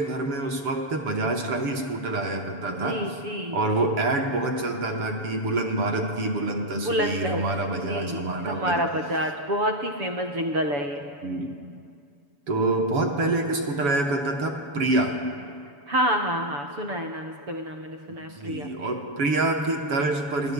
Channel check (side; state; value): left; late; 7.0 ms